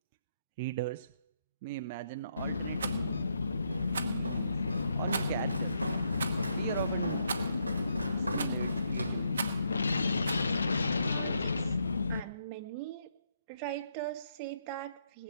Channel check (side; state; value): both; inverted; correlation -0.76